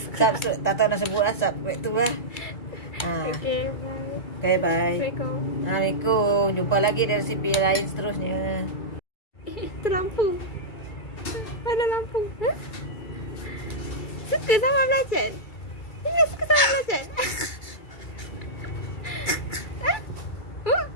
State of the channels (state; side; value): late; right; 2.3 ms